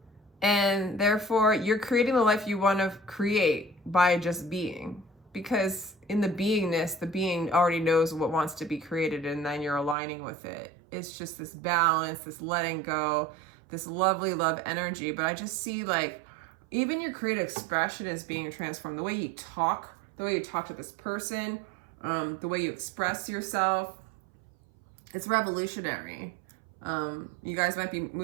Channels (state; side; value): drops out; left; at 10.0 s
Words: and therefore you're creating the life you want to create by just being. Because in the beingness, the being already knows what wants to be created, and then you're aligning with it. It's just this balance, this letting go, this lovely love energy. But I just see like, even your creative expression is being transformed. The way you talk to this person, the way you express yourself, it's revolutionary. You guys might be